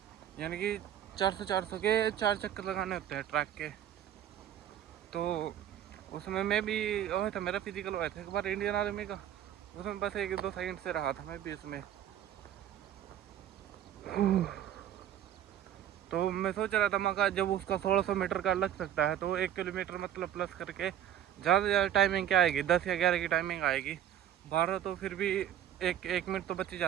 यानी कि 400 के 4 चक्कर लगाने होते हैं ट्रैक के। तो उसमें मैं भी हुआ था, मेरा फिजिकल हुआ था एक बार इंडियन आर्मी का, उसमें बस 1-2 सेकंड से रहा था मैं भी इसमें। तो मैं सोच रहा था मगर जब उसका 1600 मीटर का लग सकता है, तो 1 किलोमीटर मतलब प्लस करके ज़्यादा से ज़्यादा टाइमिंग क्या आएगी, 10 या 11 की टाइमिंग आएगी। 12 तो फिर भी एक मिनट तो बच ही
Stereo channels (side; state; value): left; quieter; 10.7 dB